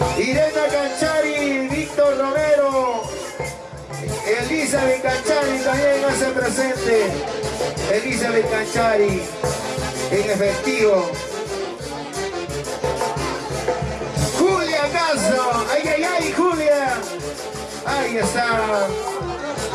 Irena Canchari, Víctor Romero, Elizabeth Canchari también hace presente. Elizabeth Canchari, en efectivo. Julia Castro, ay, ay, ay, Julia. Ahí está.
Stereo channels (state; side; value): identical; both; correlation 1.00